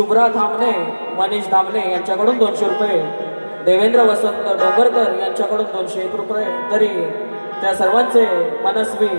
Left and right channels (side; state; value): both; inverted; correlation -1.00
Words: धामणे, मनीष धामणे यांच्याकडून 200 रुपये, देवेंद्र वसंत डोंगरकर यांच्याकडून 201 रुपये. तरी त्या सर्वांचे मनस्वी